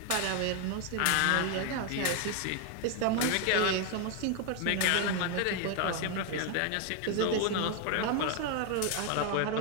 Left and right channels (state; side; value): different; both; correlation 0.01